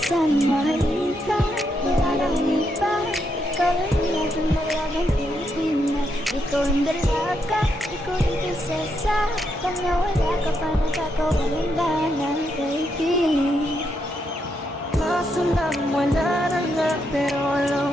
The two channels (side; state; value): both; normal; correlation 0.80